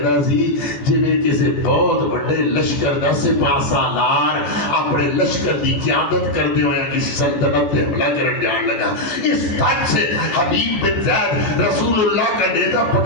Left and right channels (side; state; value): right; late; 14 ms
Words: سی جویں کسی بہت بڑے لشکر دا سپاہ سالار اپنے لشکر دی قیادت کردے ہوئے کسی سلطنت تے حملہ کرن جان لگا. اس تک سے حبیب بن زید رسول اللہ کا نیزہ